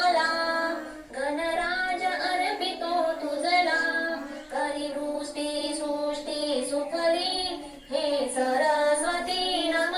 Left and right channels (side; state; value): both; identical; correlation 1.00